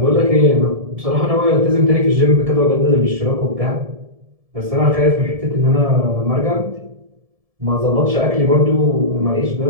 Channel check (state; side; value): late; left; 1.7 ms